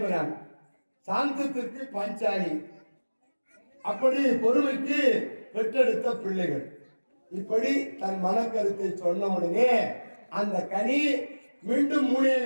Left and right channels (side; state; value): both; inverted; correlation -1.00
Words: சாந்தத்திற்கு பாஞ்சாலி, அப்படி பொறுமைக்கு பெற்றெடுத்த பிள்ளைகள். இப்படி தன் மனக்கருத்தை சொன்ன உடனே அந்த கனி மீண்டும்